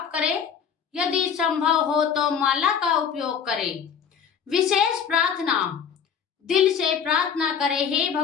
करें। यदि संभव हो तो माला का उपयोग करें। विशेष प्रार्थना। दिल से प्रार्थना करे, हे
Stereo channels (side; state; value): right; quieter; 7.3 dB